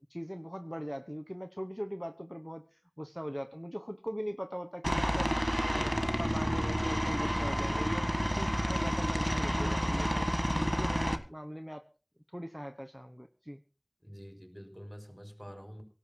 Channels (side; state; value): both; identical; correlation 1.00